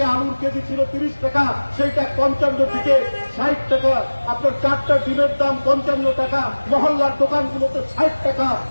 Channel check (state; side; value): inverted; both; correlation -1.00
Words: আলুর কেজি ছিল 30 টাকা, সেইটা 55 থেকে 60 টাকা। আপনার 4টা ডিমের দাম 55 টাকা, মহল্লার দোকানগুলোতে 60 টাকা।